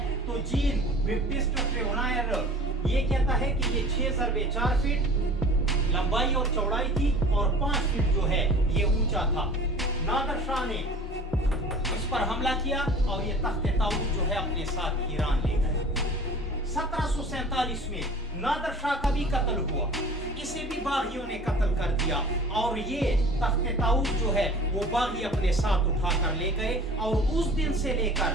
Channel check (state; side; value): normal; both; correlation 0.44